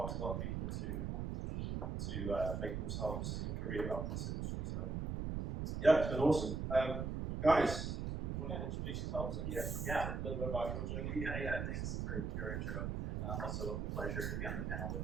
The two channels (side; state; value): right; noise; rumble, 2 dB below the sound